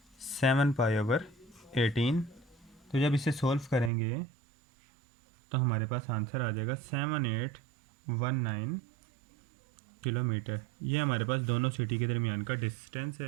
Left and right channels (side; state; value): left; drops out; at 3.9 s